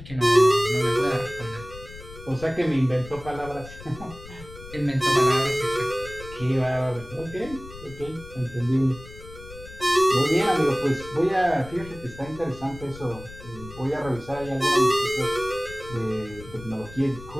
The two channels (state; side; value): noise; left; rumble, 16 dB below the sound